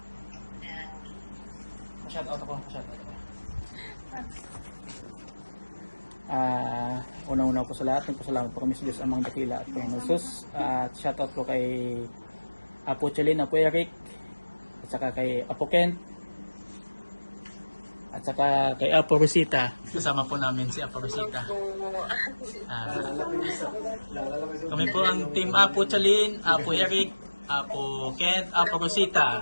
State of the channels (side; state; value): both; inverted; correlation -1.00